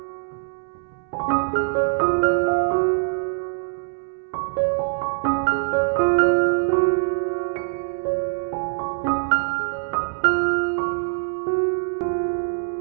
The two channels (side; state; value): left; silent; 63 dB below the other